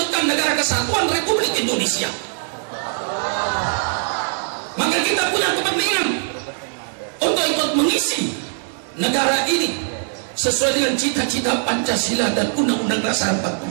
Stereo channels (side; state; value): left; silent; 62 dB below the other